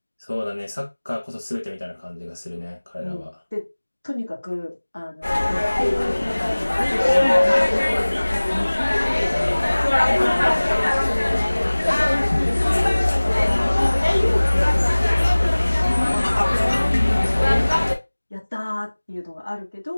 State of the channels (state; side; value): inverted; both; correlation -1.00